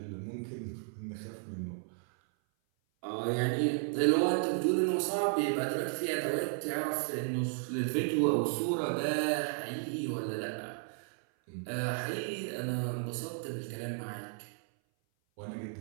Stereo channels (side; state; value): left; silent; 55 dB below the other